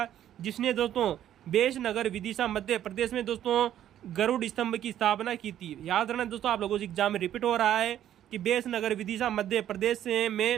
जिसने दोस्तों बेशनगर विदिशा मध्य प्रदेश में दोस्तों गरुड़ स्तंभ की स्थापना की थी। याद रखना दोस्तों, आप लोगों से एग्जाम में रिपीट हो रहा है कि बेशनगर विदिशा मध्य प्रदेश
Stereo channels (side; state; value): left; quieter; 11.3 dB